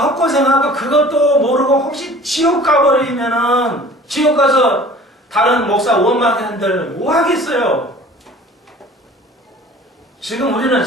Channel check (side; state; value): both; normal; correlation 0.46